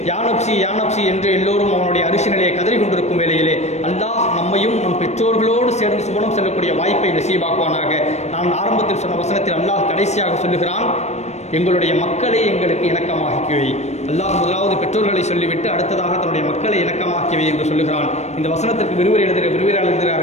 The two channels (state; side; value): late; right; 0.32 ms